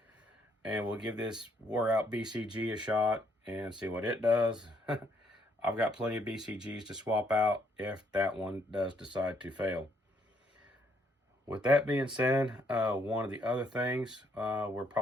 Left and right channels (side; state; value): both; normal; correlation 0.71